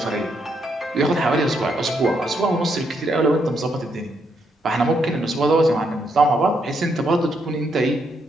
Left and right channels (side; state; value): both; normal; correlation 0.77